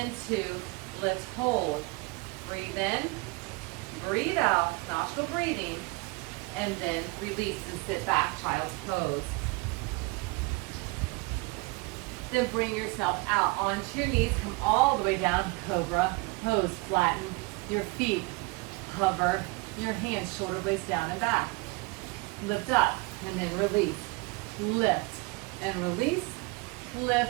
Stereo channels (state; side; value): quieter; left; 26.0 dB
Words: 2, lift, hold. Breathe in, breathe out, nostril breathing, and then release and sit back, child's pose. Then bring yourself out onto your knees, come all the way down, cobra pose. Flatten your feet, hover your hands, shoulder blades down and back. Lift up, and then release. Lift and release,